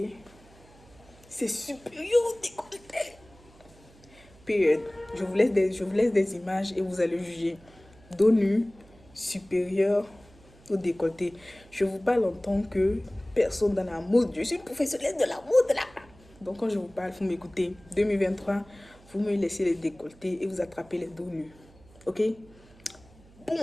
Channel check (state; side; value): noise; right; hum, 25 dB below the sound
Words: C'est supérieur au décolleté. Period. Je vous laisse des images et vous allez juger. Dos nu supérieur au décolleté. Je vous parle en tant que personne dans la mode. Je suis professionnelle de la mode là. Donc quand je vous parle, vous m'écoutez. 2023, vous me laissez les décolletés et vous attrapez les dos nus. Ok?